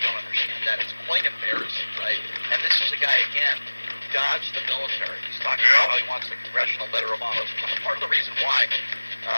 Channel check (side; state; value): both; inverted; correlation -1.00